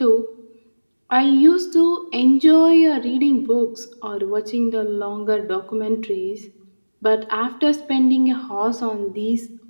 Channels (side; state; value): both; inverted; correlation -1.00